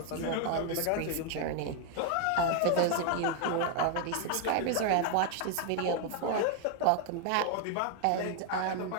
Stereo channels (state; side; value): different; both; correlation 0.00